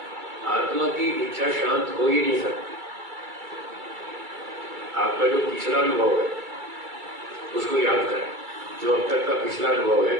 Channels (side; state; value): left; late; 2.3 ms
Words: आत्मा की इच्छा शांत हो ही नहीं सकती। आपका जो पिछला अनुभव है उसको याद करें, जो अब तक का पिछला अनुभव है